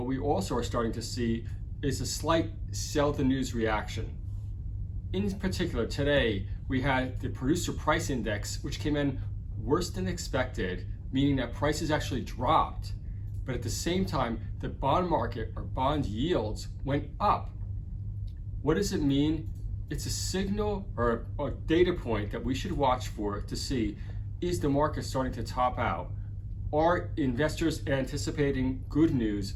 we also are starting to see is a slight sell the news reaction. In particular, today, we had the producer price index, which came in worse than expected, meaning that prices actually dropped. But at the same time, the bond market or bond yields went up. What does it mean? It's a signal or a data point that we should watch for to see, is the market starting to top out? Are investors anticipating good news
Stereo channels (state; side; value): identical; both; correlation 1.00